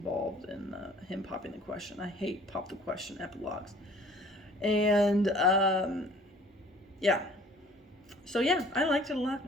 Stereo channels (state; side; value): normal; both; correlation 0.52